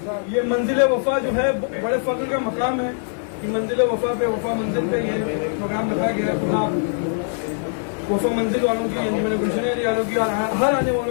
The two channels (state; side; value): silent; right; 64 dB below the other